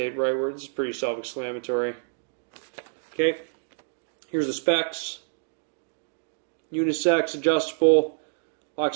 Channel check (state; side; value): silent; left; digital silence